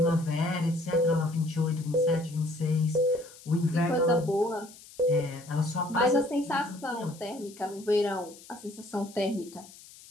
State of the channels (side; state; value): left; noise; hiss, 20 dB below the sound